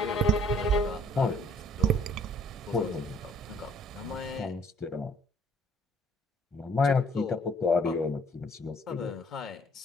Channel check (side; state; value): both; normal; correlation 0.59